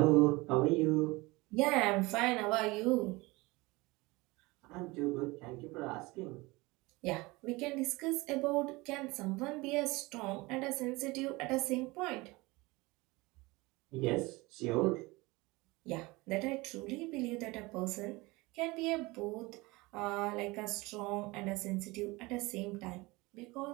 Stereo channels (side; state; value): left; quieter; 22.9 dB